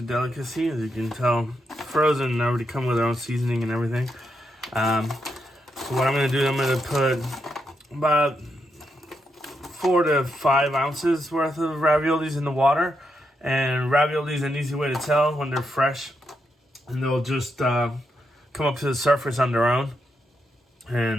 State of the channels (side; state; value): both; normal; correlation 0.82